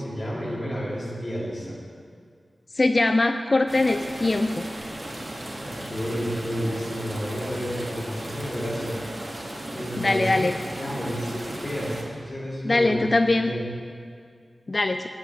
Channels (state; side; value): normal; both; correlation 0.97